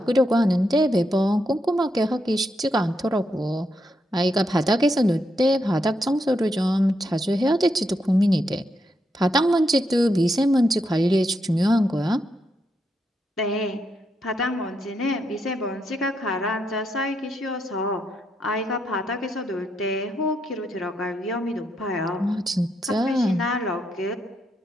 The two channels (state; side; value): normal; both; correlation 0.81